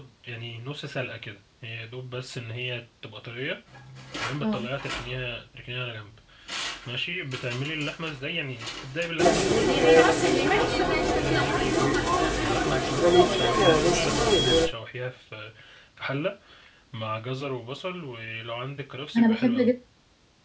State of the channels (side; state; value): both; identical; correlation 1.00